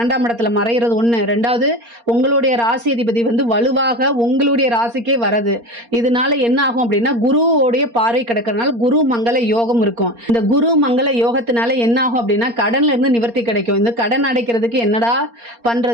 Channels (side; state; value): left; late; 4.3 ms